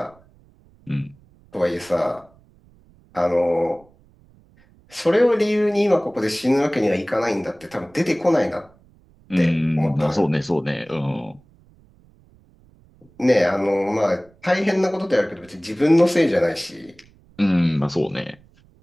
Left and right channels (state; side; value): noise; right; rumble, 30 dB below the sound